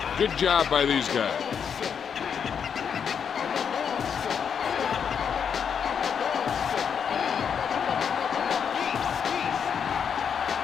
Good job by these guys.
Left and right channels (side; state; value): right; quieter; 7.2 dB